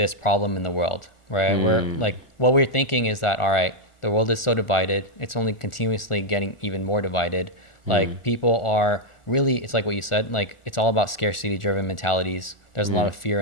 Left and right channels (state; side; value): late; right; 1.4 ms